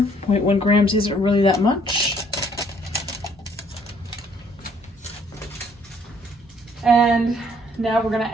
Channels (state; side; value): normal; both; correlation 0.63